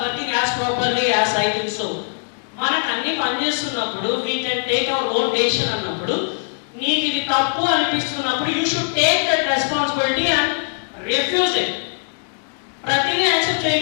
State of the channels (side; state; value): right; silent; 63 dB below the other